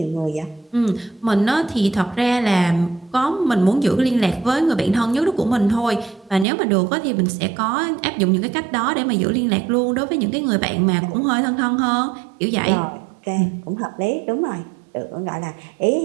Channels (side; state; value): left; drops out; at 6.5 s